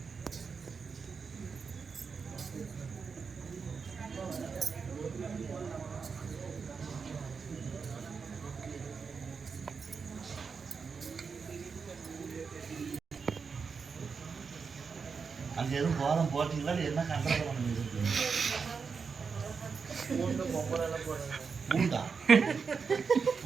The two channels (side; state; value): left; quieter; 5.5 dB